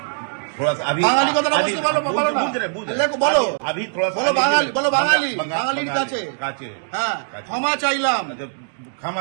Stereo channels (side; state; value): left; silent; digital silence